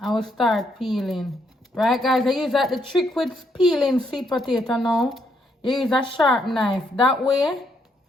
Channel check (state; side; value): normal; both; correlation 0.74